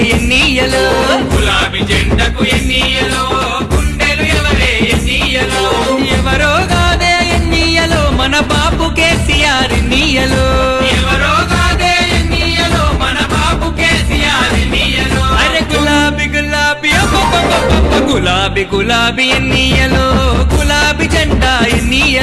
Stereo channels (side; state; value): both; identical; correlation 1.00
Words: ఎన్నియలో గులాబీ జెండకు ఎన్నియలో గుండెలు ఎవరే ఎన్నియలో ఎవరో కాదే ఎన్నియలో మన బాపు కేసీఆర్ ఎన్నియలో ఎవరో కాదే ఎన్నియలో మన బాపు కేసీఆర్ ఎన్నియలో అరే గులాబీ గులాబీ గులాబీ గులాబీ ఎన్నియలో గులాబీ జెండా